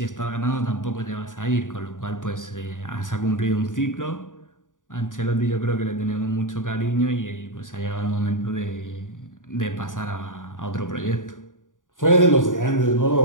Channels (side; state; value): right; late; 0.88 ms